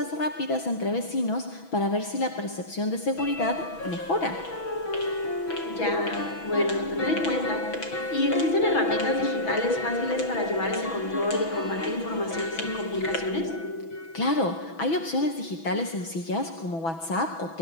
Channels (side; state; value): right; late; 6.1 ms